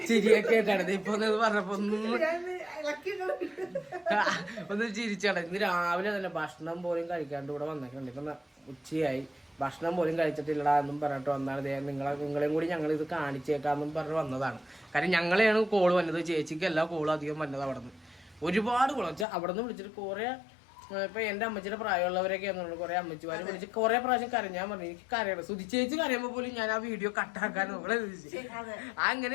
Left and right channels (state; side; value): drops out; right; at 19.2 s